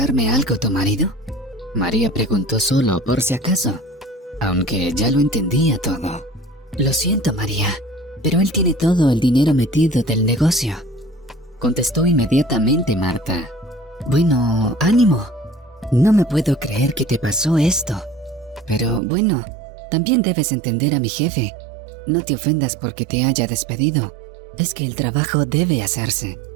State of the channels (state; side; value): drops out; left; at 19.0 s